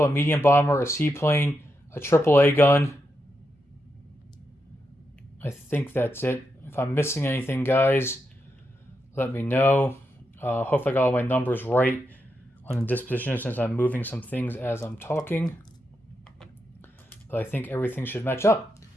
a medium bomber, a seaplane, a AAA gun. I think that's it. If I'm missing anything, guys, let me know. Hopefully I got all my numbers right on the disposition since I'm moving some things as I'm talking. But I think everything should match up.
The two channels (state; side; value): normal; both; correlation 0.85